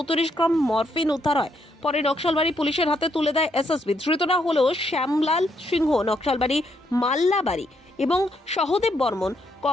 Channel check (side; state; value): both; normal; correlation 0.75